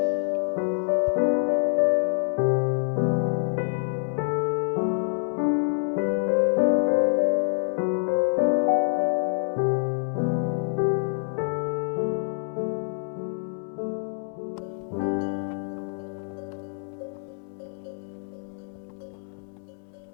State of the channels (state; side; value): silent; right; digital silence